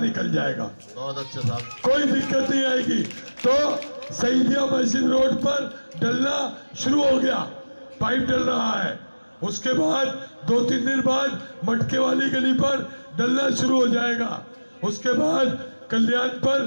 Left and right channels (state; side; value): inverted; both; correlation -1.00